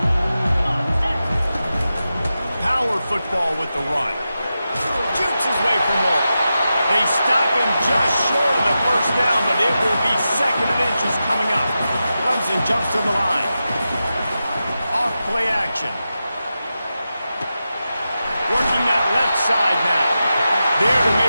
Power football with the run. Jukes his way for more. They stop him just short of the first down, but it will be second and inches coming up. Clemson jumps to the line. Off play action. Working that left side now. There to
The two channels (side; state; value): both; inverted; correlation -0.91